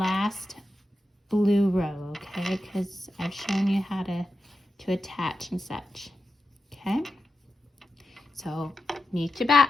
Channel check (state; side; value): normal; both; correlation 0.90